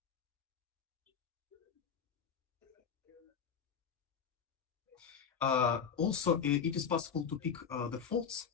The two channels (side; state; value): right; quieter; 6.9 dB